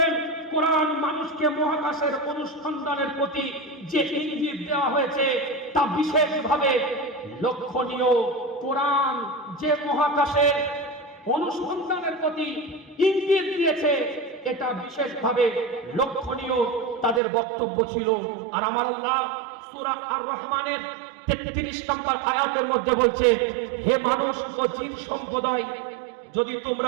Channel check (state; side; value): drops out; left; at 17.2 s